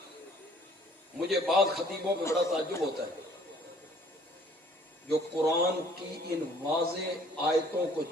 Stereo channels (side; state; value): both; normal; correlation 0.57